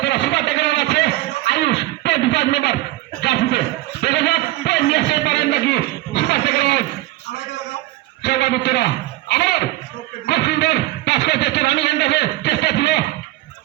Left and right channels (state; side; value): quieter; left; 17.1 dB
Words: সুপার টেকার আছে আয়ুষ 25 নম্বর জার্সিতে দেখা যাক নিয়ে আসতে পারেন নাকি সুপার টেকার সর্বাধিকরা আবার খুব সুন্দর পাস করে চেষ্টা রানি গেন্দাকে চেষ্টা ছিল